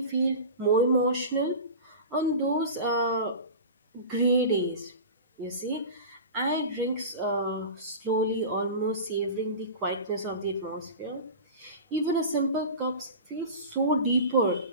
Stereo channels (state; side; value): inverted; both; correlation -0.31